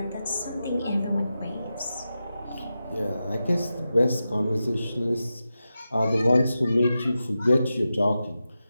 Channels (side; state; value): both; inverted; correlation -0.91